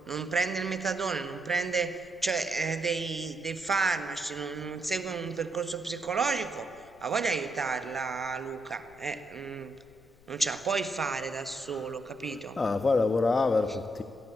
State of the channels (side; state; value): left; noise; rumble, 27 dB below the sound